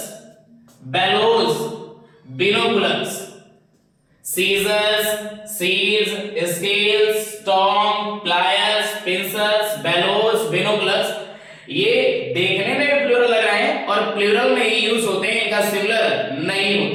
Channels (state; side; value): identical; both; correlation 1.00